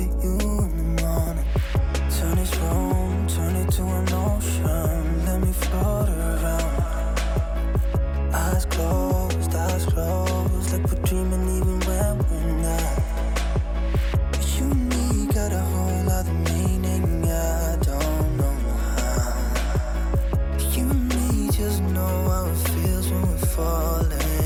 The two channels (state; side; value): identical; both; correlation 1.00